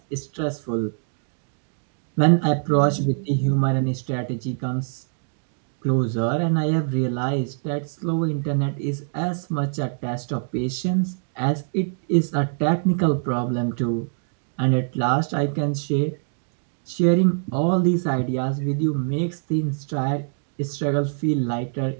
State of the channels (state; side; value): silent; left; digital silence